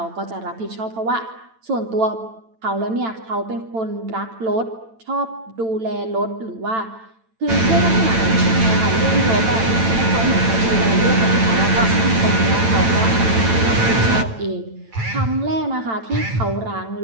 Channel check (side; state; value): left; late; 9.0 ms